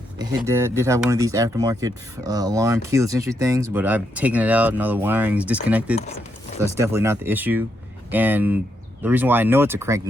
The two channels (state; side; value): normal; both; correlation 0.79